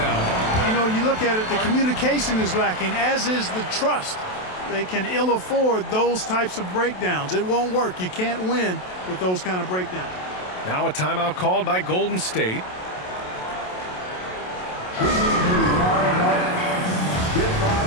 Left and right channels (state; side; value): late; right; 27 ms